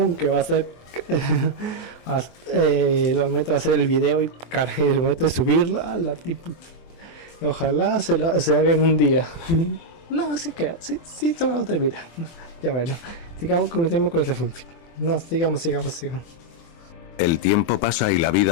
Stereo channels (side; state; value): right; late; 24 ms